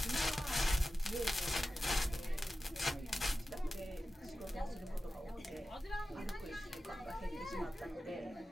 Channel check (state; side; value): normal; both; correlation 0.94